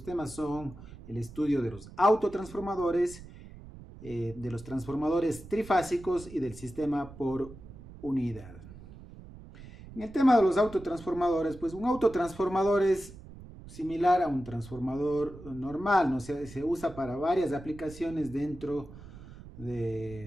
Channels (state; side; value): noise; right; rumble, 17 dB below the sound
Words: temas son el estudio de los autotransformadores, de los transformadores trifásicos y del sistema por unidad. En el tema de los autotransformadores, pues un autotransformador es similar a un transformador normal, ¿no? Se usa para varias aplicaciones dentro